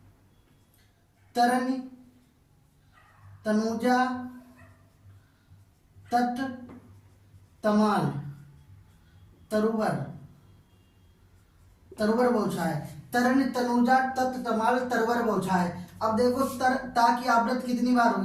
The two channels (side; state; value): both; identical; correlation 1.00